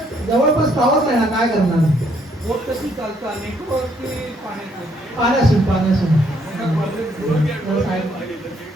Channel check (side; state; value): both; normal; correlation 0.69